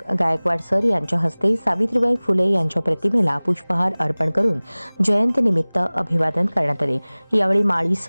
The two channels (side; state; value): both; inverted; correlation -1.00